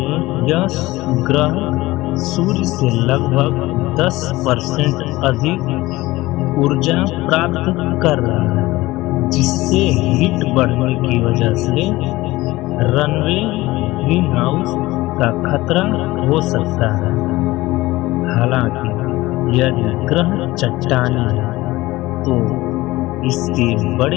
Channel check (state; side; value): quieter; right; 18.9 dB